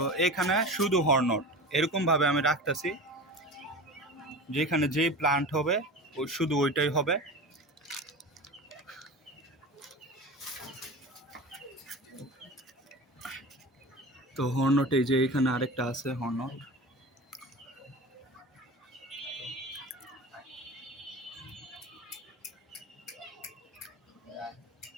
এখানে শুধু হর্নট, এরকমভাবে আমি রাখতেছি। যেখানে যেই প্লান্ট হবে ওই শুধু ওইটাই হবে। তো হর্নট, এই যে এখানে আরেকটা আছে হর্নট।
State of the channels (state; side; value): normal; both; correlation 0.31